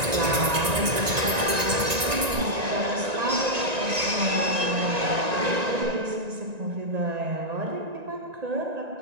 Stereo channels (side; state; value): left; late; 1.9 ms